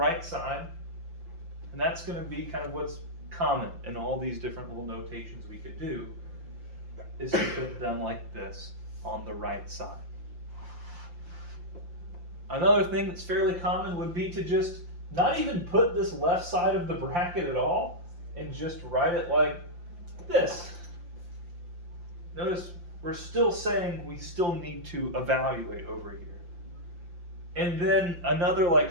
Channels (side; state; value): left; late; 5.8 ms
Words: side. And that's going to be kind of what's common in all these different little notations we could do, is to put them like this on the right side. Another thing that's fairly common would be to just not even put this left side of the bracket at all and just write it like this. Notice we're still saying we still need to evaluate over here. And then another like